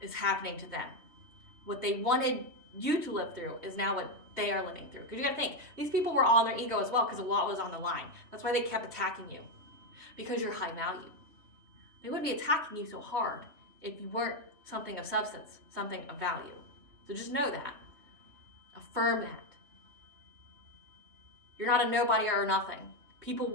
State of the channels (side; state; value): left; late; 3.2 ms